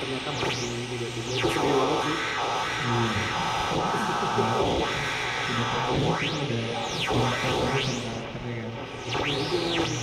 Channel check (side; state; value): both; identical; correlation 1.00